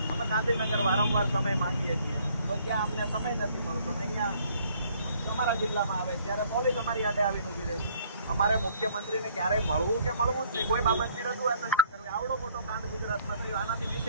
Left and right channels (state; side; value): inverted; both; correlation -0.61